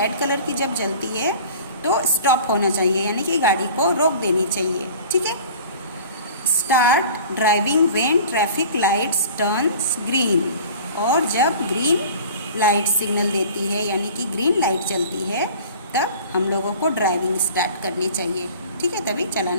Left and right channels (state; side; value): inverted; both; correlation -0.43